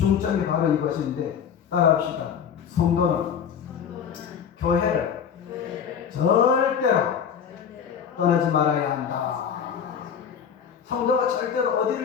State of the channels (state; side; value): quieter; right; 7.7 dB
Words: 바로 이것인데 따라합시다. 성도는 교회를 절대로 떠나지 말아야 한다. 성도가 절대로